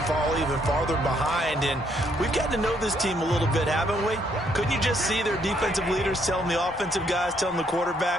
fall even farther behind. And we've gotten to know this team a little bit, haven't we? Couldn't you just see their defensive leaders telling the offensive guys, telling the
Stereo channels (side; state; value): both; normal; correlation 0.71